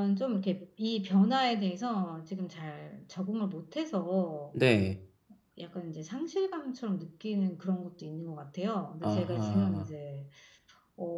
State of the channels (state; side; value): identical; both; correlation 1.00